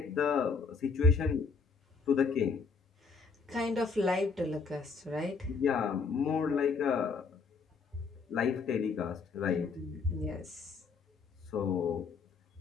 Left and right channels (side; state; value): right; quieter; 4.9 dB